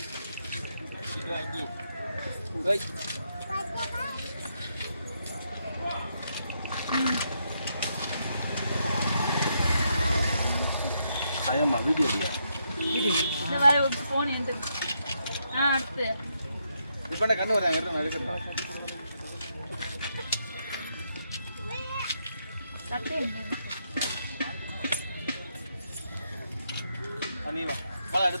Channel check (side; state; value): both; inverted; correlation -0.79